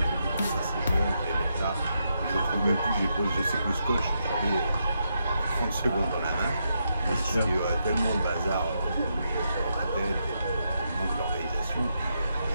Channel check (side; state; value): both; inverted; correlation -0.82